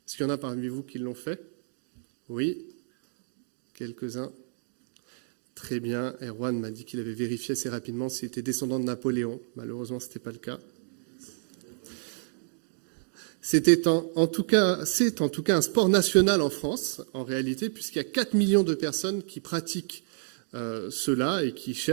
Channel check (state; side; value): silent; left; digital silence